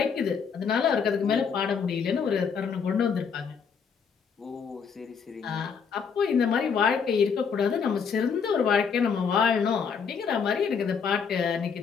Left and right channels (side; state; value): right; quieter; 6.3 dB